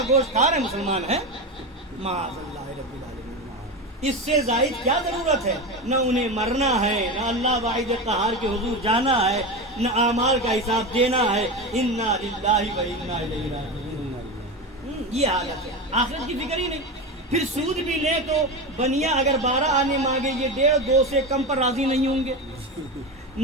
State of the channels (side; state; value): both; normal; correlation 0.20